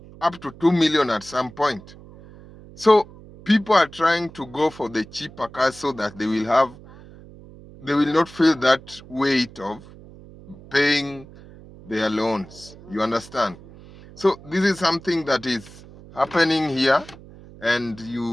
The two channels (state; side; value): noise; right; hum, 20 dB below the sound